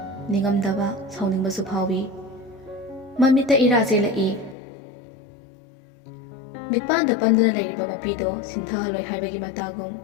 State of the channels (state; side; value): drops out; right; at 4.5 s